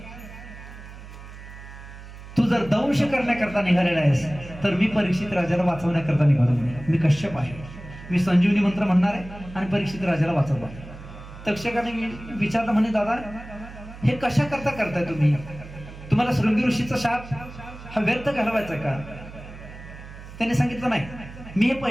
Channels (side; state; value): right; noise; hum, 15 dB below the sound